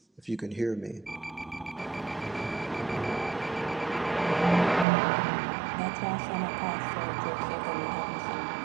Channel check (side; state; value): left; drops out; at 4.9 s